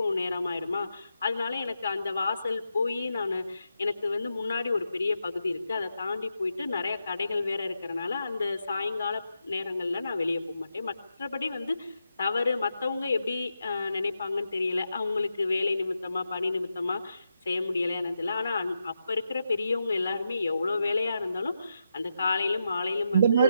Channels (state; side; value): inverted; both; correlation -0.86